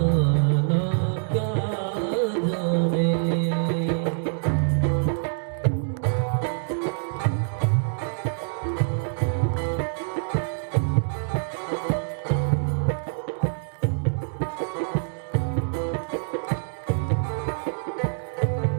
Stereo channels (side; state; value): left; silent; digital silence